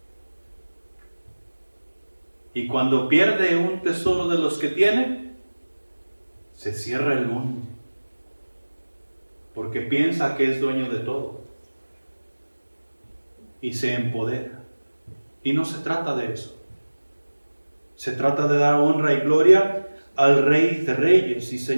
Y cuando pierde un tesoro de los que tiene, se cierra el mundo, porque piensa que es dueño de todo y se empodera. Y no se trata de eso. Se trata de dar honra y gloria al Rey de Reyes y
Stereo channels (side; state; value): both; inverted; correlation -1.00